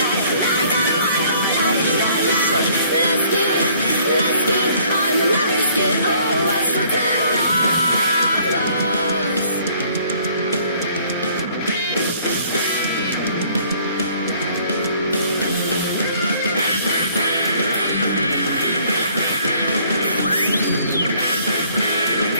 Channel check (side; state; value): both; inverted; correlation -0.59